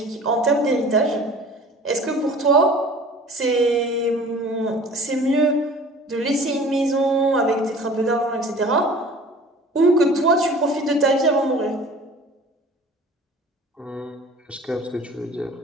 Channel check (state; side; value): normal; both; correlation 0.45